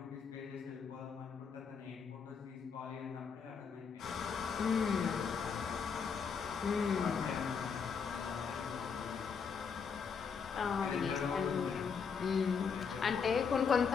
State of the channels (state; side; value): quieter; right; 6.1 dB